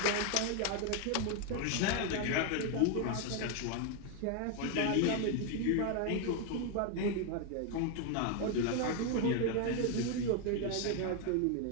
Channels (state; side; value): different; both; correlation 0.01